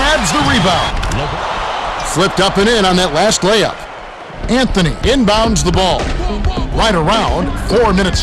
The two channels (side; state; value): both; identical; correlation 1.00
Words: the rebound. Flipped up and in on that last layup. Anthony inbounds the ball. Right around, 4 minutes